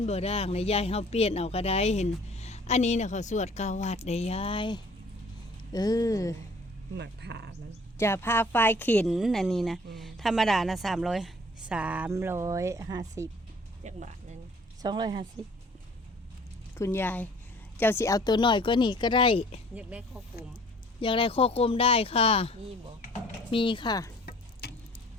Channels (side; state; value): both; normal; correlation 0.53